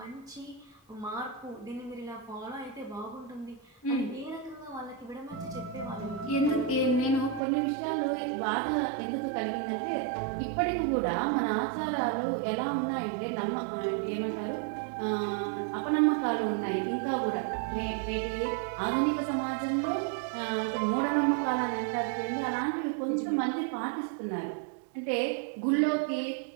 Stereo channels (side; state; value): left; drops out; at 7.4 s